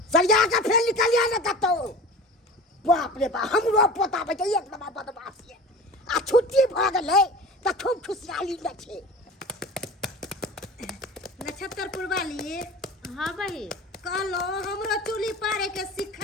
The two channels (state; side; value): normal; both; correlation 0.37